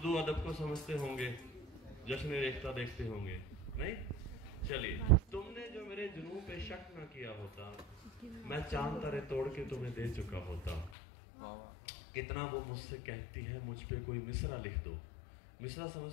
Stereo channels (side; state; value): right; drops out; at 10.9 s